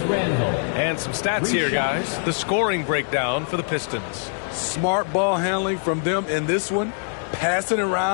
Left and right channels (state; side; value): silent; right; digital silence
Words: some stats here, guys. The scoring breakdown for the Pistons. Smart ball handling from them in this one, passing